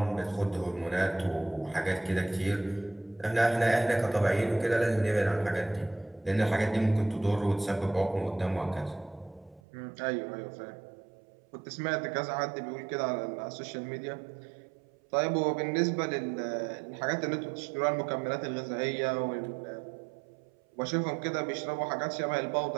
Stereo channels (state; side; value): drops out; left; at 9.6 s